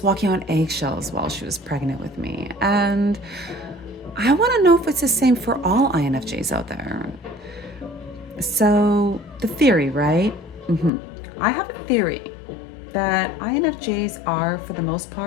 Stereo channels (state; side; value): drops out; right; at 10.9 s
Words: walking on eggshells while she was pregnant with me. And I want to know if it's the same for all INFJs out there. So the theory, right? I have a theory that INFJs are, for the most